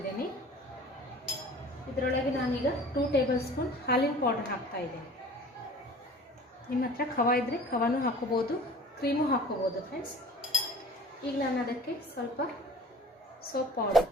ಇದರೊಳಗೆ ನಾನೀಗ 2 ಟೇಬಲ್ ಸ್ಪೂನ್ ಹಾಲಿನ ಪೌಡರ್ ಹಾಕ್ತಾ ಇದ್ದೀನಿ. ನಿಮ್ಮ ಹತ್ರ ಖವ ಇದ್ದರೆ ಖವಾನೂ ಹಾಕೋಬೋದು, ಕ್ರೀಮು ಹಾಕೋಬೋದು ಫ್ರೆಂಡ್ಸ್. ಈಗ ನಾನು ಅದಕ್ಕೆ ಸ್ವಲ್ಪ ಸೋಪ್ ಪೌಡರ್,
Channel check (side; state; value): both; normal; correlation 0.44